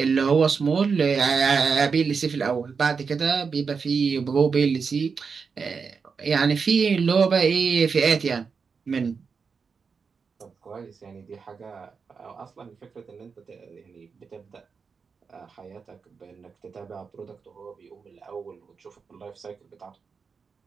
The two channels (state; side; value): quieter; left; 5.5 dB